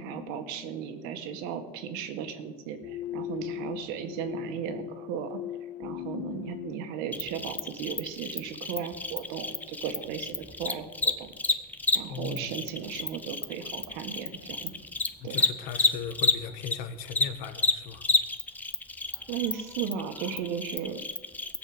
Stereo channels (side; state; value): both; normal; correlation -0.13